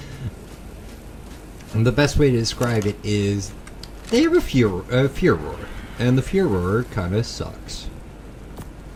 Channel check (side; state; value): both; identical; correlation 1.00